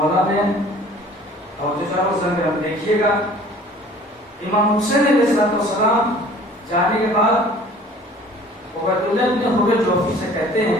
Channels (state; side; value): normal; both; correlation 0.49